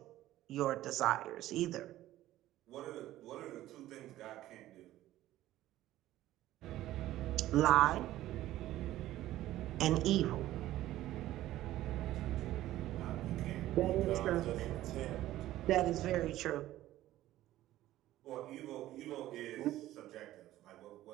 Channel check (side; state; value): left; quieter; 14.7 dB